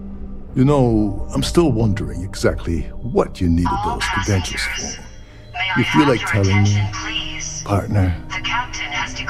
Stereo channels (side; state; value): both; identical; correlation 1.00